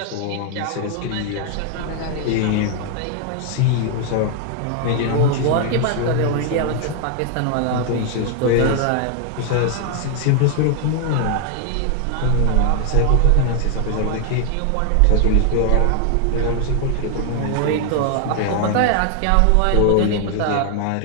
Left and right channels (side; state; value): both; different; correlation 0.00